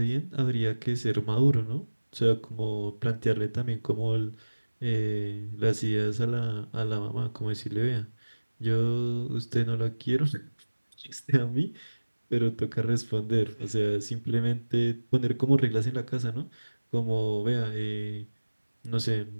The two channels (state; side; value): inverted; both; correlation -1.00